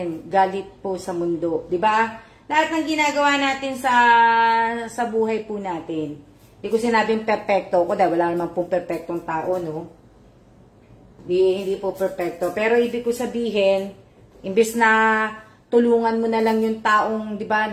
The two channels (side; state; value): both; identical; correlation 1.00